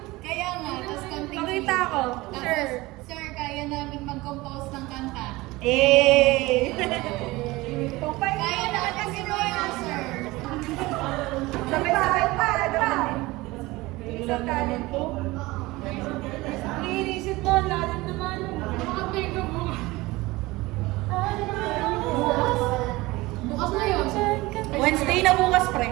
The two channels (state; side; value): quieter; left; 20.6 dB